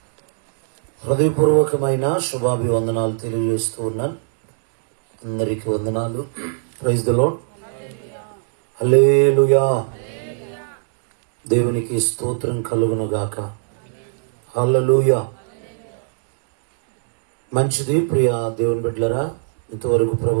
హృదయపూర్వకమైన శుభాభివందనాలు తెలియజేస్తూ ఉన్నాను. అందరికీ వందనాలు. Praise the Lord. హల్లెలూయా. దేవునికి స్తోత్రం కలుగును గాక. హల్లెలూయా. మంచిది ప్రియ దేవుని బిడ్డలారా, ఇంతవరకు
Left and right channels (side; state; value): left; silent; digital silence